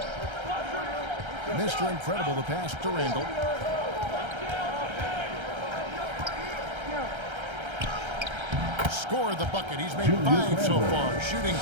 Mr. Incredible, the pass to Randall. Scored the bucket. He's made 5 so far, shooting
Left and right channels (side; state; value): left; late; 1.3 ms